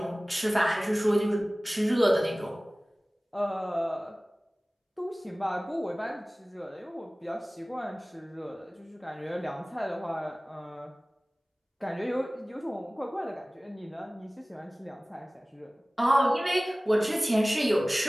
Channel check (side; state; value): both; normal; correlation 0.98